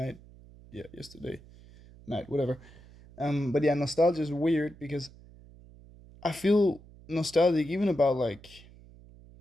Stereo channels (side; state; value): right; noise; hum, 22 dB below the sound